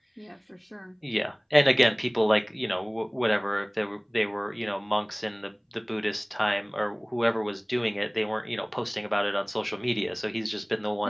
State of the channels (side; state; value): both; identical; correlation 1.00